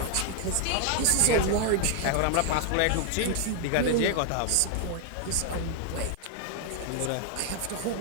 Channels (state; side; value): different; both; correlation 0.00